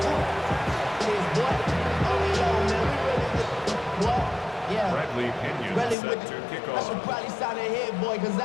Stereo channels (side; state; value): right; drops out; at 6.0 s